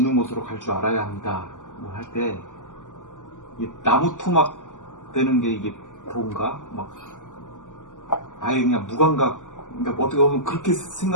곳으로 갈 줄 알아야 합니다. 뭐 할 때 나무 토막 되는 게 이게 그런가? 막 아예 그냥 무감각, 그러니까 어떻게 보면 그렇게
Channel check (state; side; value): late; right; 0.87 ms